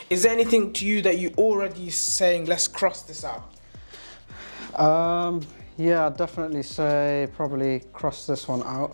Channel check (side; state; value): both; inverted; correlation -1.00